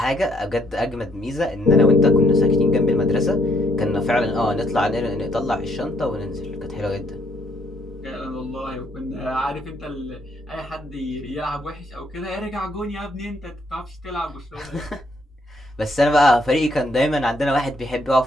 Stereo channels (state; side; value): normal; both; correlation 0.70